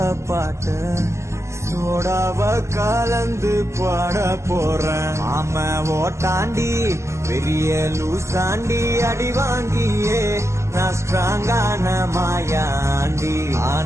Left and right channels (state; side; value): late; left; 0.13 ms